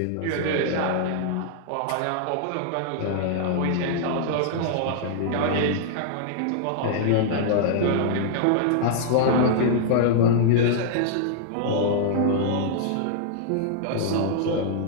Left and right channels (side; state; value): both; different; correlation -0.01